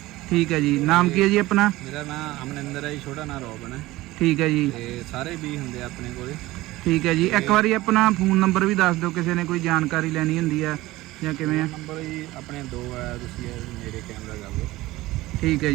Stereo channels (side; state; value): left; quieter; 18.3 dB